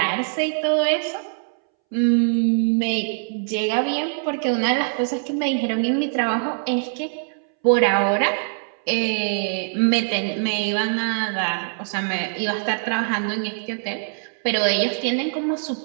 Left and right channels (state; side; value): silent; left; 64 dB below the other